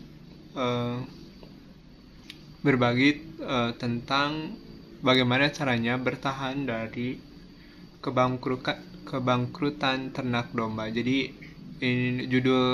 eh, berbagi tentang bagaimana caranya bertahan dari kebangkrutan ternak domba. Jadi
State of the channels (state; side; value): identical; both; correlation 1.00